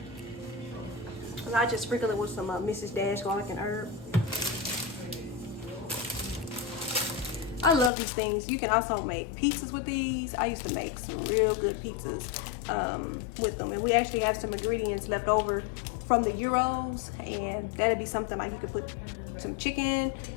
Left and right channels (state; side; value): drops out; right; at 7.9 s